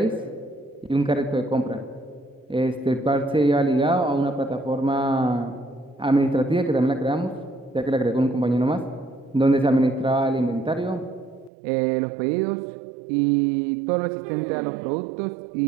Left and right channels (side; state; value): left; drops out; at 11.5 s